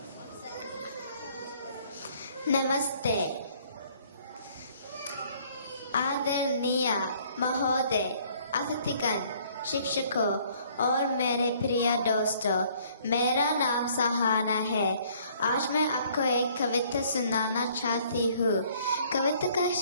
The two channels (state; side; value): inverted; both; correlation -0.60